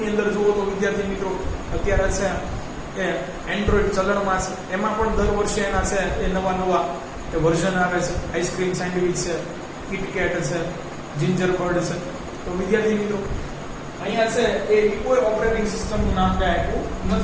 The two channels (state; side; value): identical; both; correlation 1.00